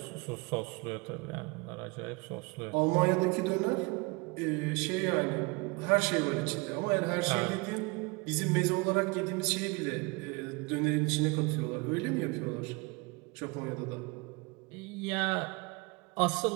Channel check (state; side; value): quieter; left; 27.1 dB